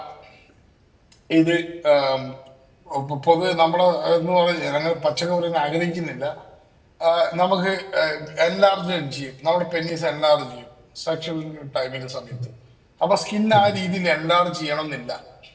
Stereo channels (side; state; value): both; identical; correlation 1.00